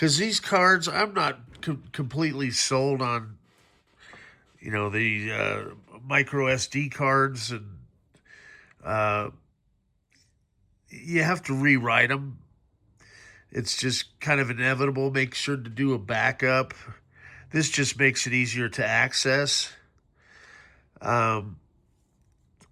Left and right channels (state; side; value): identical; both; correlation 1.00